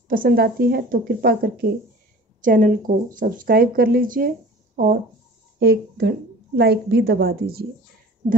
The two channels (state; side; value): normal; both; correlation 0.43